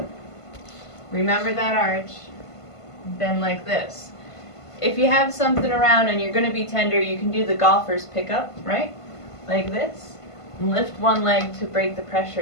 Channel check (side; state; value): right; late; 1.5 ms